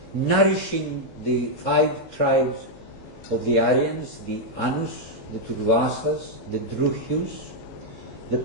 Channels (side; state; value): right; late; 18 ms